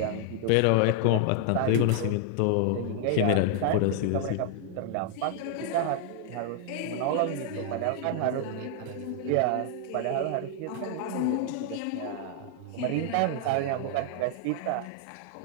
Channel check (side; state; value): both; different; correlation 0.00